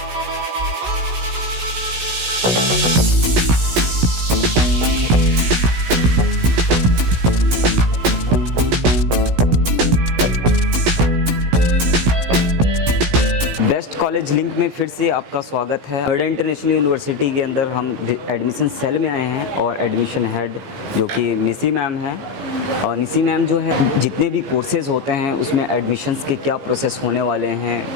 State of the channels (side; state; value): left; late; 16 ms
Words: बेस्ट कॉलेज लिंक में फिर से आपका स्वागत है। नोएडा इंटरनेशनल यूनिवर्सिटी के अंदर हम एडमिशन सेल में आए हैं और एडमिशन हेड जो कि निसी मैम हैं। और निसी मैम जो है जितने भी कोर्सेज़ होते हैं उसमें एडमिशन्स के क्या प्रोसेस होने वाले हैं,